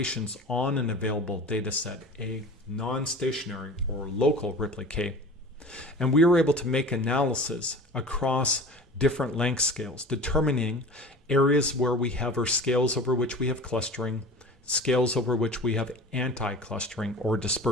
on an available data set, a non-stationary or local Ripley K. And we were able to make analysis across different length scales, determining areas where we have, or scales over which we have clustering, scales over which we have anti-clustering or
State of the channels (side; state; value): both; normal; correlation 0.37